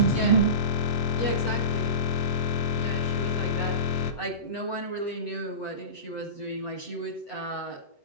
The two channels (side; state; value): right; late; 7.8 ms